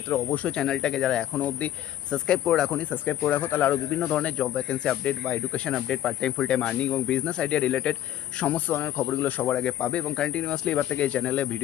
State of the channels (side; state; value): right; quieter; 12.3 dB